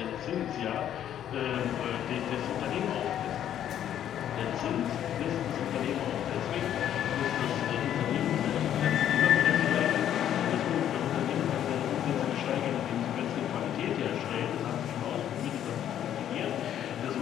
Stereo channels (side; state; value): right; quieter; 10.5 dB